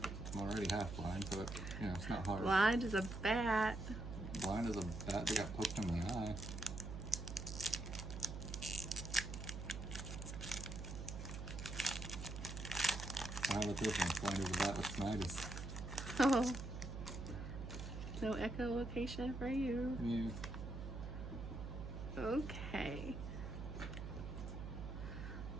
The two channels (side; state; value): right; noise; hum, 7 dB below the sound